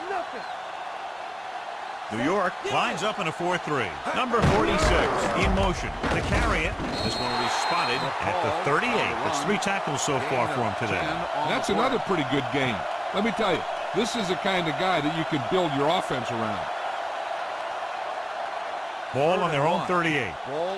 nothing. New York lines up in a 4-3. Number 46 in motion to carry it. This one will be spotted at the 38. That's 3 tackles so far for him today. That's another pretty good game. Let me tell you, this is the kind of guy that you can build your offense around. Ball on their own 38.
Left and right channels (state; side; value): identical; both; correlation 1.00